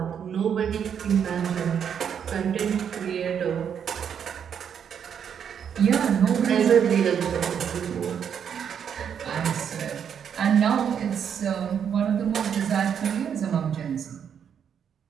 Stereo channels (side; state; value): left; quieter; 8.0 dB